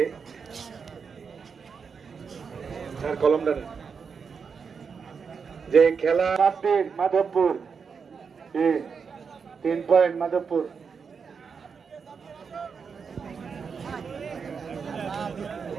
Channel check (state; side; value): quieter; left; 5.9 dB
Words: কলমটা যে খেলা মাধবপুর 3 পয়েন্ট মাধবপুর।